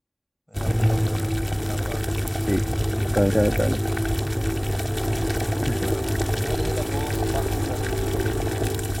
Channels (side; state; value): both; identical; correlation 1.00